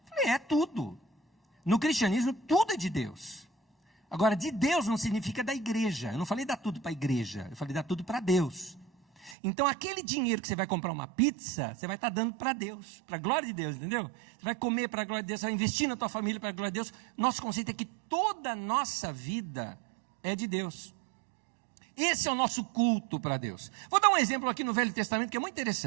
Eu falei, é tudo. No cristianismo, tudo é de Deus. Agora, de Deus não significa da igreja. Eu não falei dar tudo para a igreja, eu falei dar tudo para Deus. Então, aquele dinheiro que você vai comprar uma pizza, você vai estar dando para Deus, para a glória de Deus, entendeu? Você vai comer para a glória de Deus, você vai investir na tua família para a glória de Deus. Nosso conceito é que toda a nossa vida é de Deus. Esse é o nosso culto para Deus. Vou dar um exemplo aqui no Velho Testamento que é muito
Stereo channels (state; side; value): drops out; left; at 9.3 s